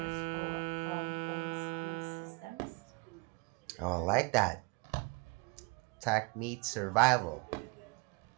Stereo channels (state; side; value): quieter; left; 29.0 dB